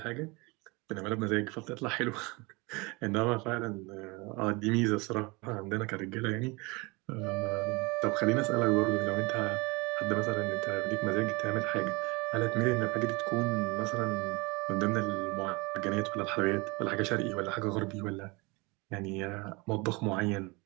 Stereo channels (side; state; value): left; quieter; 26.2 dB